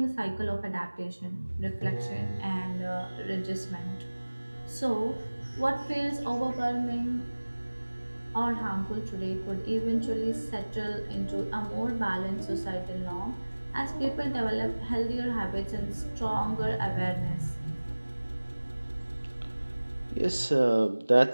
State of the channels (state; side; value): inverted; both; correlation -1.00